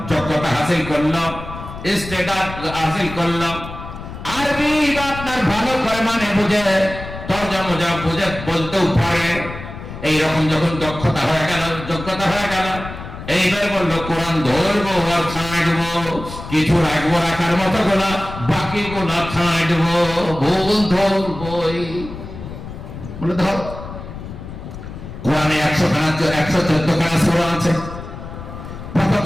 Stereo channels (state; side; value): noise; left; rumble, 11 dB below the sound